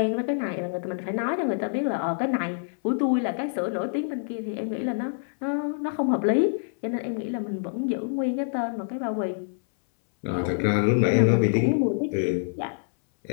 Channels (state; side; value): silent; right; 61 dB below the other